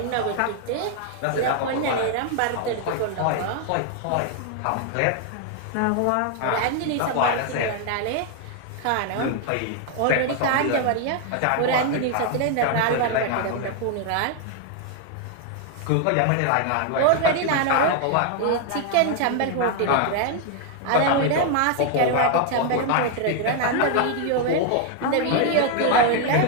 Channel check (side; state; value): both; different; correlation 0.00